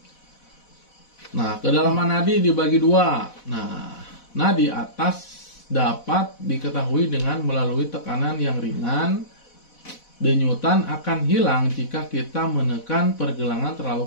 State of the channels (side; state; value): right; late; 4.1 ms